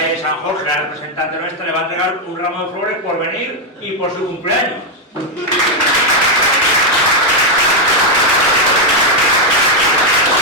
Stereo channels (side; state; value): both; normal; correlation 0.01